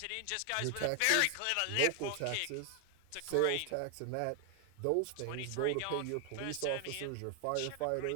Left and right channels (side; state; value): both; different; correlation 0.00